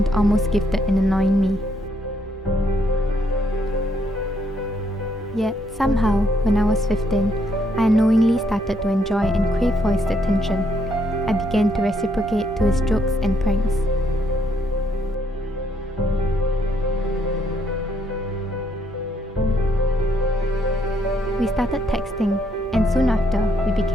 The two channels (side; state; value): both; normal; correlation 0.73